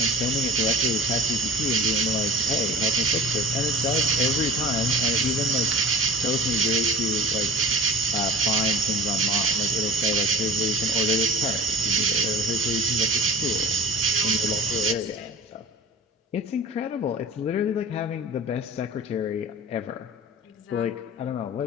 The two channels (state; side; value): normal; both; correlation 0.39